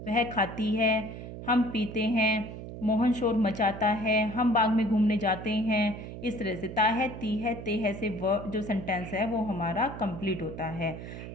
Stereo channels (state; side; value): noise; right; hum, 10 dB below the sound